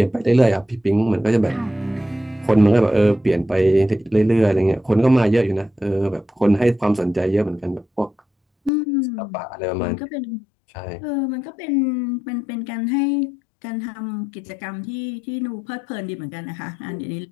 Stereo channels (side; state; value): right; drops out; at 8.7 s